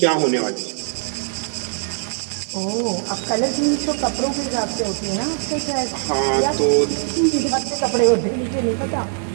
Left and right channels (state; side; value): silent; left; digital silence